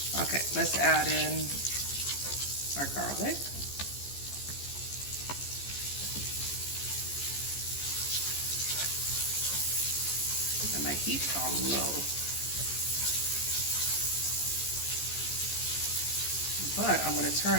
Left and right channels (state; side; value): late; right; 14 ms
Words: Okay, let's add in our garlic. And my heat's on low. But I'm gonna turn